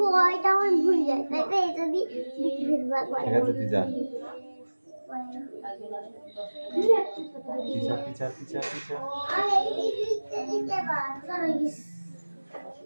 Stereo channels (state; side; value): inverted; both; correlation -1.00